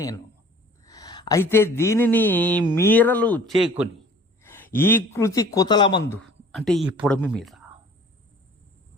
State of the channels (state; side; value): normal; both; correlation 0.50